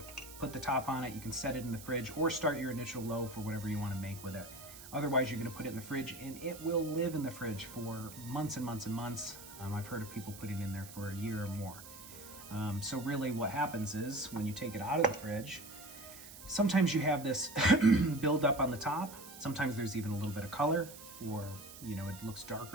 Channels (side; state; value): right; noise; hiss, 15 dB below the sound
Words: put the top on it. You can set it in the fridge or start your initial loaf or whatever you wanna make with it. Otherwise, you're gonna put it in the fridge, and it will live in the fridge for months and months and months. I've heard of people putting it in there for a year or more. So really what happens is when you take it out of the fridge, sometimes you have this build up on the top. Sometimes there's even a little bit of color, or it looks